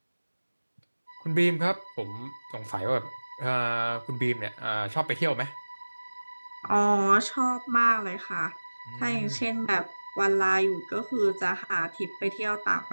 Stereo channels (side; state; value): both; inverted; correlation -1.00